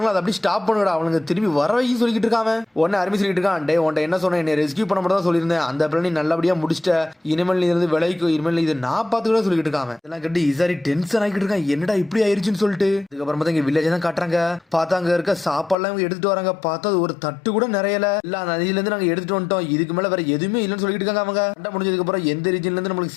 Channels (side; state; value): right; drops out; at 15.8 s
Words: அதை அப்படி ஸ்டாப் பண்ணுடா, அவனுக்கு திரும்பி வர வைக்கும் சொல்லிட்டு இருக்காங்க. உடனே அருமை சொல்லிட்டு இருக்கான், டே உன்ட்ட என்ன சொன்னேன், என்னை ரெஸ்கியூ பண்ண மட்டும் தான் சொல்லியிருந்தேன், அந்த பிளான் நல்லபடியா முடிச்சிட்ட, இனிமேல் நீ இருந்து விலைக்கு இனிமேல் இது நான் பார்த்துக்கிட்ட சொல்லிட்டு இருக்காங்க. இதெல்லாம் கட்டி இசாரி டென்ஷன் ஆகிட்டு இருக்கான், என்னடா இப்படி ஆயிருச்சுன்னு சொல்லிட்டு. அதுக்கப்புறம் பார்த்தா இங்க வில்லேஜ் தான் காட்டுறாங்க. பார்த்தா அங்க இருக்க சாப்பாடுலாம் இவங்க எடுத்துட்டு வராங்க. பார்த்தா ஒரு தட்டு கூட நிறையல இல்ல, நதியில இருந்து நாங்க எடுத்துட்டு வந்துட்டோம், இதுக்கு மேல வேற எதுவுமே இல்லைன்னு சொல்லிட்டு இருக்காங்க. அவங்க சண்டை முடிஞ்சதுக்கு அப்புறம் எந்த ரீஜன்ல இருந்து